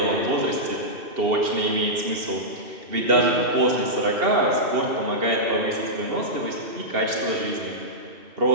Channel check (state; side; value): late; left; 2.8 ms